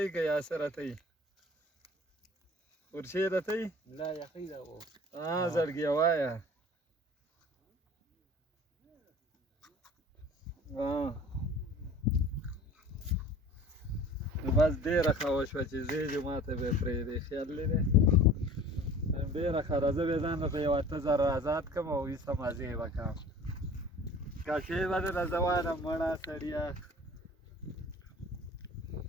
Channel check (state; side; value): normal; both; correlation 0.45